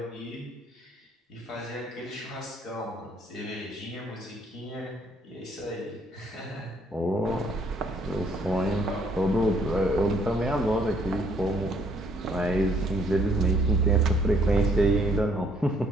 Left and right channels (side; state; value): both; normal; correlation 0.65